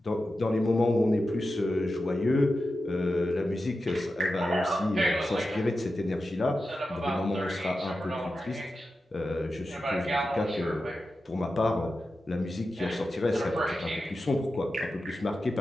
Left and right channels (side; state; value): both; normal; correlation 0.91